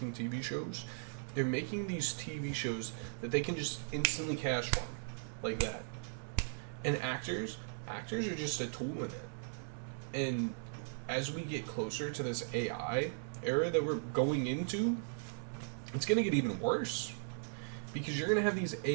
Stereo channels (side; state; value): left; silent; 53 dB below the other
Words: TV shows. They're making these TV shows that they can just instantly cash from, like that. And actors are just a tool in it. And as we get closer to this AI era that we're going into, it's going to get even worse. Because you're going to have these